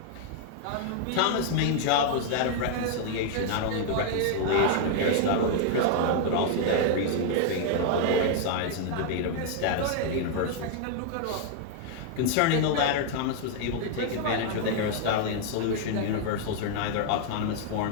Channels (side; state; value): both; different; correlation 0.00